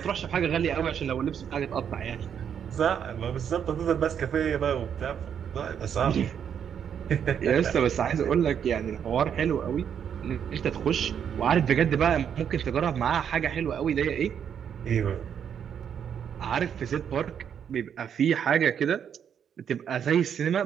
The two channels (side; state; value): left; quieter; 8.2 dB